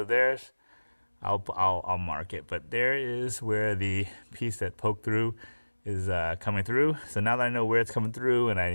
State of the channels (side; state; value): both; inverted; correlation -1.00